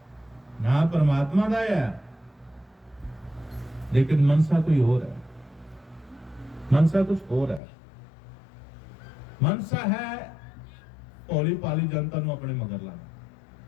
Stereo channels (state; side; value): drops out; right; at 7.6 s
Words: ਨਾ ਪਰਮਾਤਮਾ ਦਾ ਹੈ, ਲੇਕਿਨ ਮਨਸਾ ਕੋਈ ਹੋਰ ਹੈ, ਮਨਸਾ ਕੁਝ ਹੋਰ ਹੈ। ਮਨਸਾ ਹੈ ਭੋਲੀ ਭਾਲੀ ਜਨਤਾ ਨੂੰ ਆਪਣੇ ਮਗਰ ਲਾਣਾ,